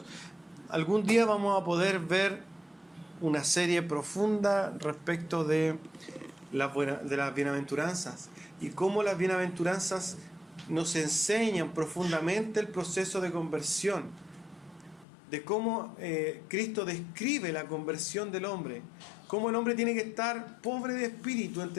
Algún día vamos a poder ver una serie profunda respecto de las bienaventuranzas y cómo las bienaventuranzas nos enseñan profundamente el proceso de conversión, de cómo Cristo describe la conversión del hombre, cómo el hombre tiene que estar pobre de espíritu,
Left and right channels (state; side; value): drops out; right; at 15.1 s